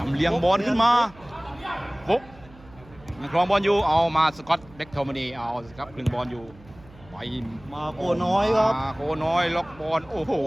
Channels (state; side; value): noise; right; hum, 23 dB below the sound